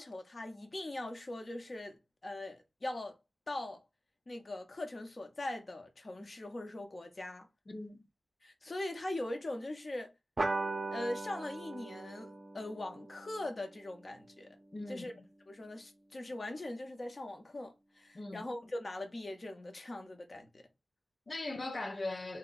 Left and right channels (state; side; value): normal; both; correlation 0.95